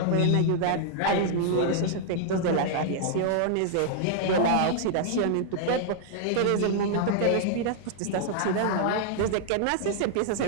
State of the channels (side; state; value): both; different; correlation -0.01